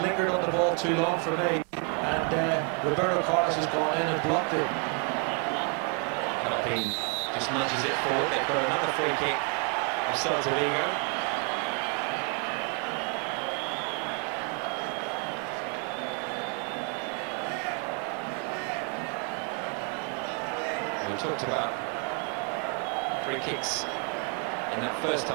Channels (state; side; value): quieter; left; 38.7 dB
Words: lingered on the ball too long for me, and Roberto Carlos has gone in and blocked it. Carpin just nudges it forward. They've got another free kick of Celta de Vigo. We talked about free kicks in that first